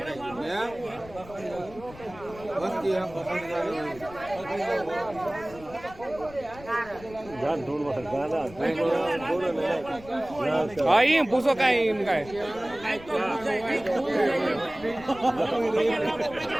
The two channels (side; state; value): left; noise; rumble, 18 dB below the sound